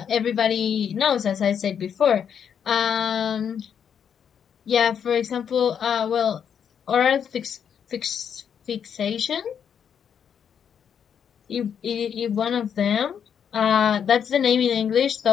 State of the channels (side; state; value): right; quieter; 7.9 dB